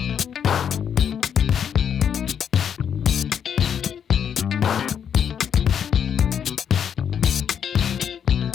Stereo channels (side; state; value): right; quieter; 8.2 dB